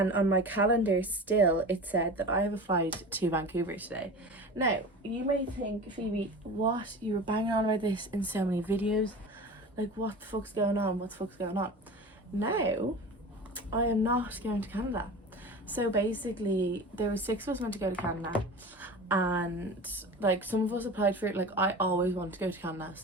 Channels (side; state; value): both; normal; correlation 0.34